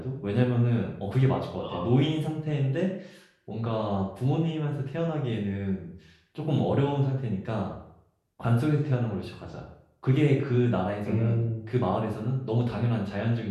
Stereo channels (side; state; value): both; identical; correlation 1.00